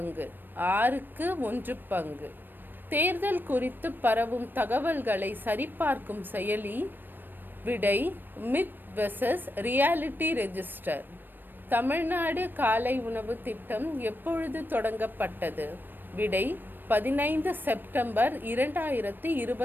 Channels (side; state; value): left; late; 0.093 ms